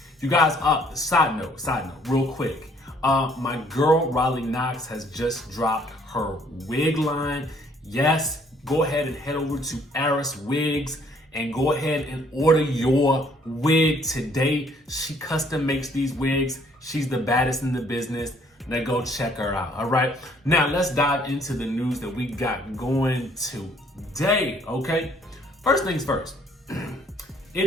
you guys, side note, real quick. My girl, Riley Knox, has just dropped her wig line. Yes, go ahead and head over to Aris Wigs and go ahead and order your wig today. She custom makes these wigs. She's the baddest in the business. Now go check her out, all right? Now let's dive into the news that we got going today, okay? First things first, it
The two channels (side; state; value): both; normal; correlation 0.62